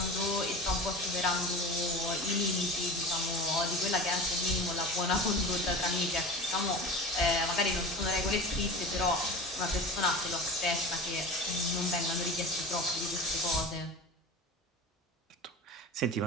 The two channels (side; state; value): both; normal; correlation 0.34